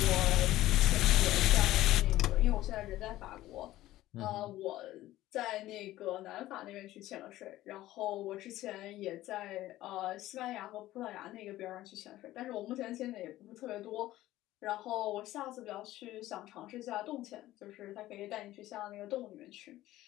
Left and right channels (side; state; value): right; quieter; 15.5 dB